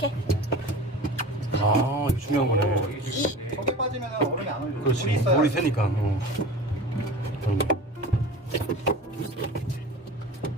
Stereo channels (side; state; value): both; normal; correlation 0.36